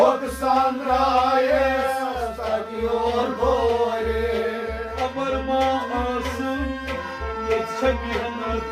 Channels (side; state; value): both; identical; correlation 1.00